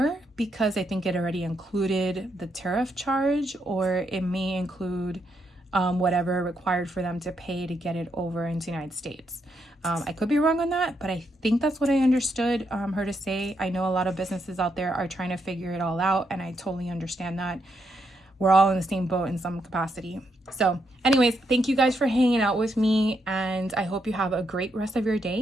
because I think it already included the tariff charge, or it may include whatever required for them to pay to get it over into the United States. I could be wrong on that, but I think that's what I understood her to say. I know a lot of businesses out there are trying to figure it all out, and I totally understand that. We're all in the same boat in some capacity. So anyways, thank you guys for hanging out with me, and I hope you have a great rest of your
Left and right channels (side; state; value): both; normal; correlation 0.79